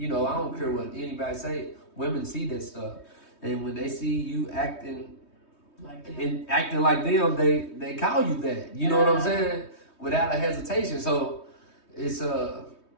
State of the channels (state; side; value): late; right; 3.2 ms